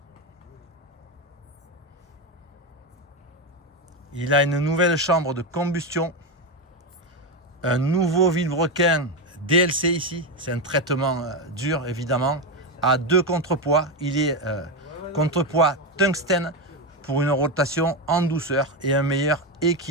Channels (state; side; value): normal; both; correlation 0.11